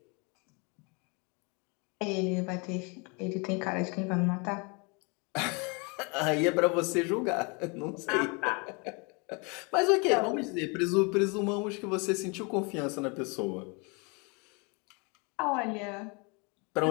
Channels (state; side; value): quieter; right; 31.2 dB